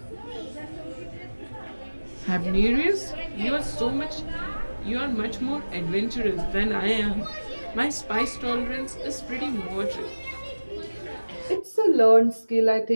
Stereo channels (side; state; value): both; inverted; correlation -1.00